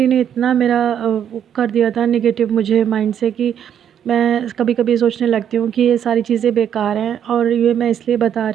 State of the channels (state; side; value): quieter; left; 9.2 dB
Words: ने इतना मेरा वो कर दिया था नेगेटिव मुझे माइंड से, कि मैं कभी-कभी सोचने लगती हूँ कि ये सारी चीज़ें बेकार हैं। और ये मैं इसलिए बता